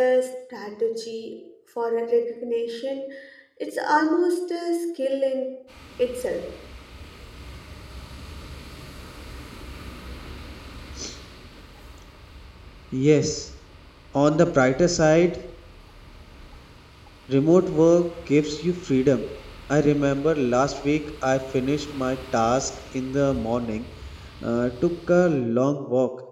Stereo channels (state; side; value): identical; both; correlation 1.00